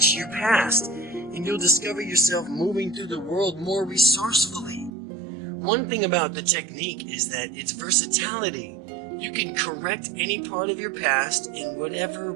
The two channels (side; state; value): left; drops out; at 4.9 s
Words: your past. and you'll discover yourself moving through the world more resourcefully. One thing about the technique is that its versatility. You can correct any part of your past in whatever